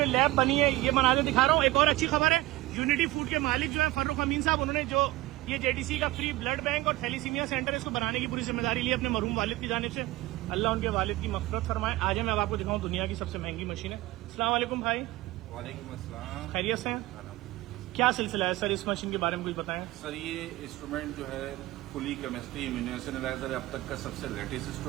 लैब बनी है ये बना के दिखा रहा हूँ। एक और अच्छी खबर है, यूनिटी फूड के मालिक जो है फर्रुख अमीन साहब, उन्होंने जो ये जेडीसी का फ्री ब्लड बैंक और थैलीसीमिया सेंटर इसको बनाने की पूरी जिम्मेदारी ली अपने मरहूम वालिद की जानिब से। अल्लाह उनके वालिद की मग़फ़िरत फरमाए। आज मैं अब आपको दिखाऊँ दुनिया की सबसे महंगी मशीन है। अस्सलाम वालेकुम भाई। वालेकुम अस्सलाम। खैरियत से हैं? क्या सिलसिला है सर, इस मशीन के बारे में कुछ बताएं। सर ये इंस्ट्रूमेंट जो है फुली केमिस्ट्री इम्यूनेशन एनालाइजर अब तक का सबसे लेटेस्ट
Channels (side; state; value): left; quieter; 18.6 dB